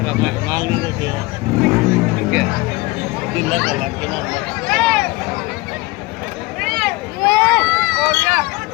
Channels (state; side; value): quieter; right; 22.5 dB